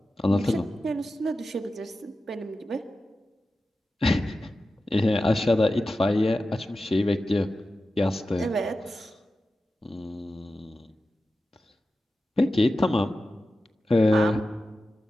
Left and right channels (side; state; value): both; normal; correlation 0.93